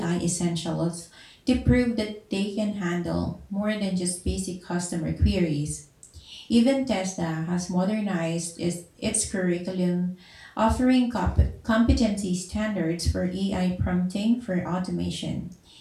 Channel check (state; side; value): identical; both; correlation 1.00